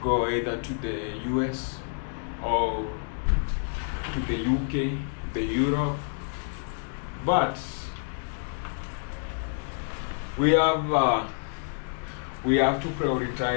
go either to the US or to the UK, the Europe. But we have to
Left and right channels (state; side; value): silent; right; 59 dB below the other